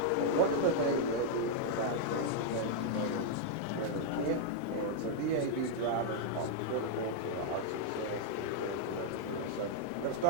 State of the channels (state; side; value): different; both; correlation -0.01